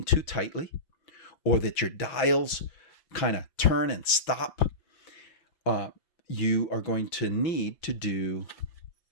too tightly, or that your dials kind of turn and stop, you are going to need to do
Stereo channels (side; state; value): right; late; 6.2 ms